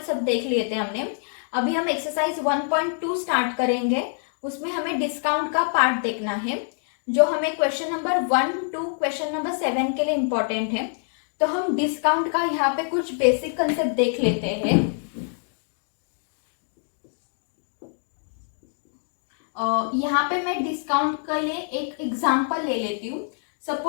सब देख लिए थे हमने। अभी हम एक्सरसाइज 1.2 स्टार्ट करेंगे। उसमें हमें डिस्काउंट का पार्ट देखना है, जो हमें question number 1 to question number 7 के लिए इंपॉर्टेंट है। तो हम डिस्काउंट का यहाँ पे कुछ बेसिक कंसेप्ट देख लेते हैं। यहाँ पे मैं डिस्काउंट के लिए एक एग्जांपल ले लेती हूँ।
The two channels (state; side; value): silent; right; digital silence